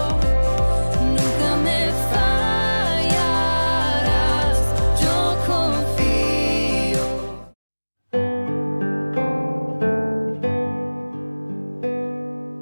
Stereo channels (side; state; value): both; inverted; correlation -1.00